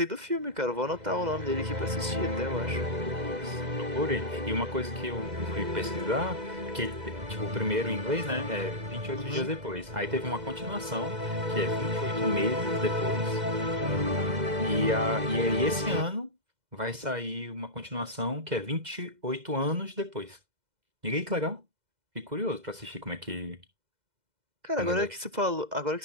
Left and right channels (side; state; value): left; late; 2.0 ms